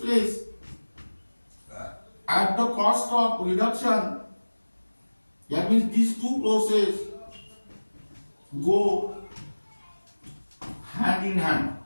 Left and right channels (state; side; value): inverted; both; correlation -1.00